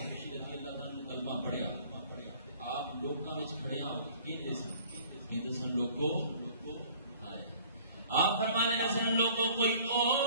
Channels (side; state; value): both; inverted; correlation -0.52